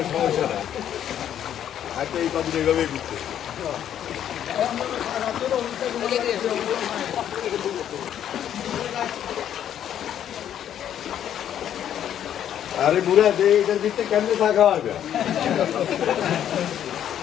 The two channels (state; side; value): quieter; right; 10.2 dB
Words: সমস্যা না, হয়তো এই পাখি এইভাবেই ঘুরতে। আরে বুড়া যে এটার ভিতরে কেমনে থাকা হবে?